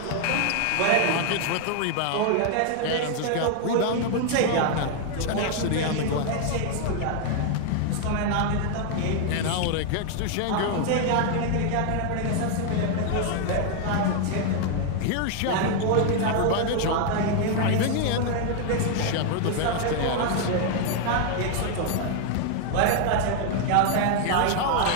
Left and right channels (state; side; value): different; both; correlation 0.00